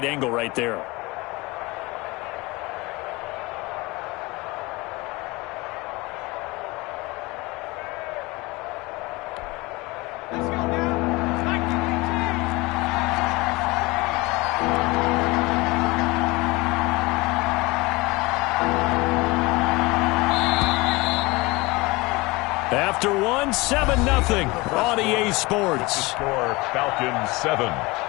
angle right there. After 7-0 on EA Sports. Score Falcons 7,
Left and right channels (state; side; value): quieter; right; 23.3 dB